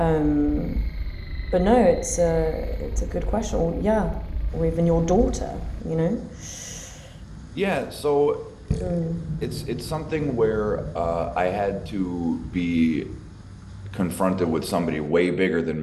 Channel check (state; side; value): identical; both; correlation 1.00